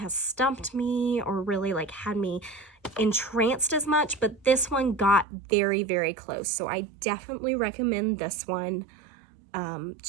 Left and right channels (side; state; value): left; drops out; at 5.2 s